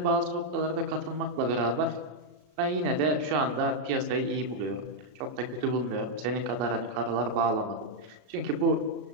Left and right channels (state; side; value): late; left; 33 ms